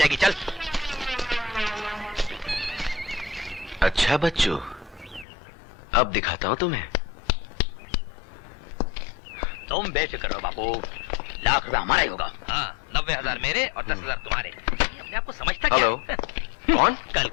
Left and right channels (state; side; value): drops out; right; at 5.2 s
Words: चल। अच्छा बच्चों, अब दिखाता हूं तुम्हें। तुम बेफिक्र रहो बापू, लाख रुपया हमारा ही होगा। हाँ, 90,000 मेरे और 10,000 तुम्हारे। अपने आपको समझता हेलो, कौन? कल